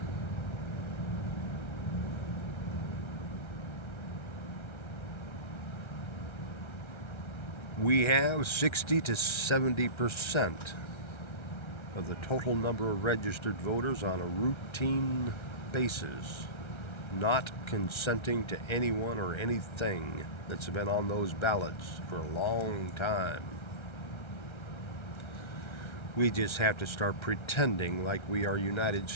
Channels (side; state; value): right; late; 1.3 ms